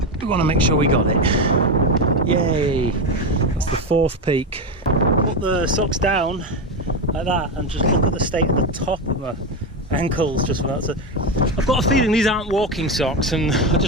we want to make sure we got it. Yay! That's the 4th peak. Put the socks down like that and just look at the state of the top of my ankles just for that. So I've got a feeling these aren't walking socks, and I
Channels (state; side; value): normal; both; correlation 0.14